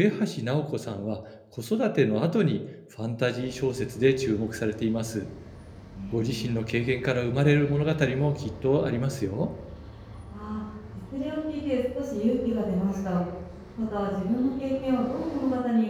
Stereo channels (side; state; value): both; identical; correlation 1.00